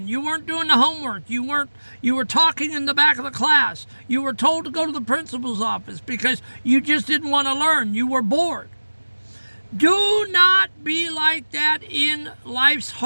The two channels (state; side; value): inverted; both; correlation -1.00